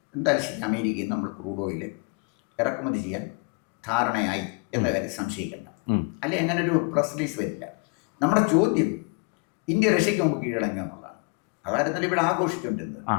എന്തായാലും ശരി അമേരിക്കയിൽ നിന്ന് നമ്മൾ ക്രൂഡ് ഓയിൽ ഇറക്കുമതി ചെയ്യാൻ ധാരണയായി എന്ന കാര്യം സംശയിക്കേണ്ട. അല്ലെ അങ്ങനെ ഒരു പ്രസ് റിലീസ് വരില്ല. നമ്മുടെ ചോദ്യം ഇന്ത്യ റഷ്യക്ക് മുമ്പ് കീഴടങ്ങി എന്നുള്ളതാണ്. അതായിരുന്നല്ലോ ഇവിടെ ആഘോഷിച്ചുകൊണ്ടിരുന്നത്.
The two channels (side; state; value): right; quieter; 34.4 dB